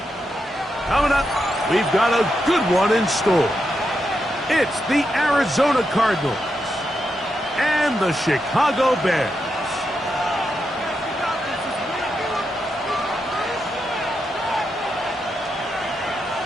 Coming up, we've got a good one in store. It's the Arizona Cardinals and the Chicago Bears.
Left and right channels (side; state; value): both; normal; correlation 0.85